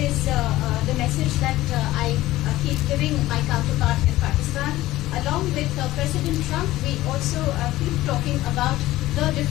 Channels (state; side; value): quieter; right; 16.4 dB